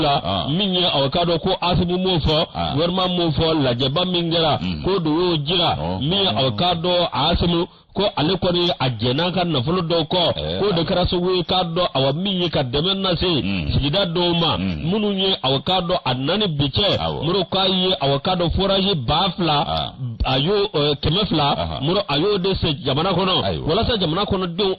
minye awakado ko asibu mofo werma mofo la jeba mingera ko do jira mi awakado asimu ko ale ko ni ajena kan na fulo do ko de karaso we kado awa minye ka demen na se sigida do ma munu nye awakado anani biche muro kai awakado forage bafla ayo kemefla muro ayo de se jamana kono wala sa jamana kono do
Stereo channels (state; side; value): identical; both; correlation 1.00